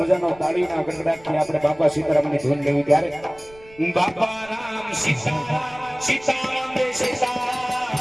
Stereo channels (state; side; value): noise; right; rumble, 25 dB below the sound